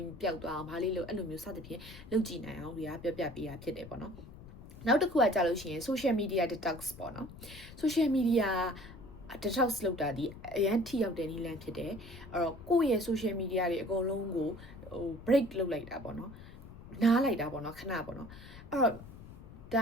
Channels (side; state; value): left; noise; rumble, 16 dB below the sound